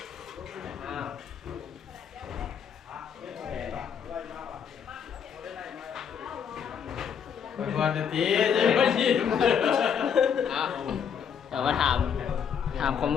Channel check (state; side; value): quieter; right; 7.5 dB